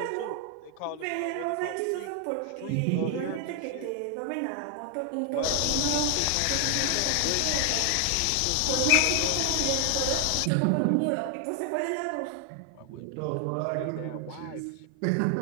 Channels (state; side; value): different; both; correlation 0.00